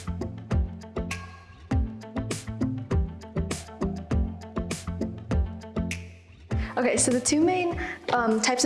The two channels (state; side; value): identical; both; correlation 1.00